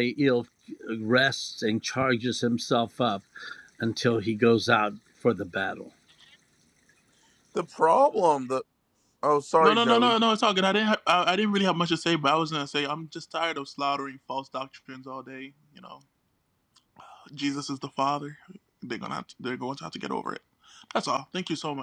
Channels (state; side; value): identical; both; correlation 1.00